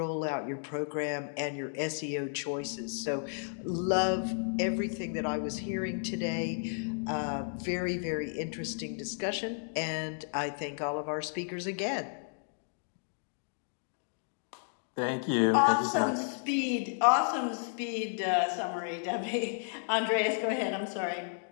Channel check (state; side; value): silent; right; digital silence